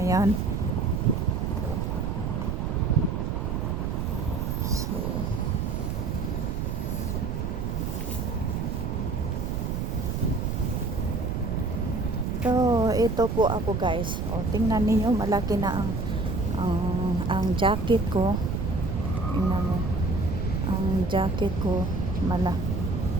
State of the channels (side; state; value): right; noise; rumble, 2 dB below the sound